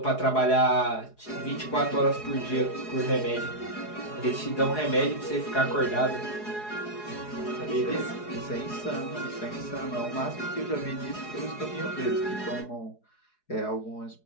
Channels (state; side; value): late; right; 4.8 ms